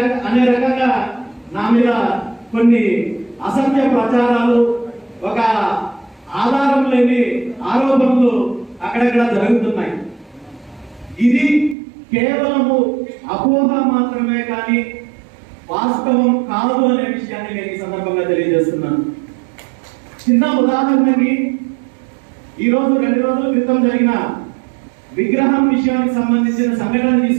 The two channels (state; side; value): drops out; left; at 11.8 s